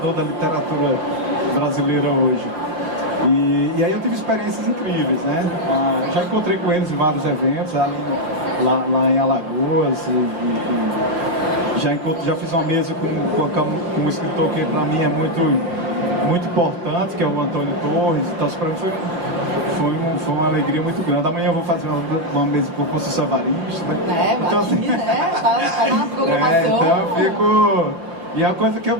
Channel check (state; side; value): late; left; 5.7 ms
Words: da literatura brasileira hoje. E aí eu tive experiências incríveis, né? Já encontrei com eles em vários eventos, lá em Alagoas, já fiz uma mesa com um escritor que para mim é muito importante, que é o Antônio Torres. Então para mim foi uma alegria muito grande. Amanhã eu vou fazer uma mesa com o Conceição Evaristo, né? Então, assim, tá na programação. Então eu fico... E é uma coisa que eu